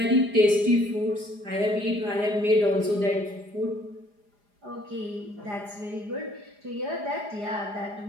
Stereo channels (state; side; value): late; left; 4.9 ms